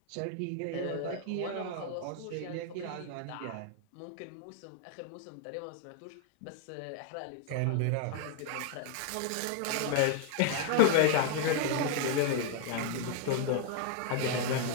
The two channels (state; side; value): different; both; correlation 0.00